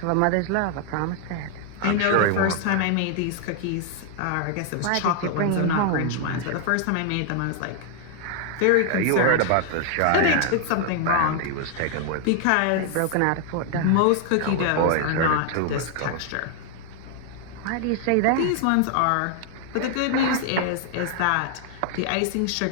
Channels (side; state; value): both; different; correlation 0.00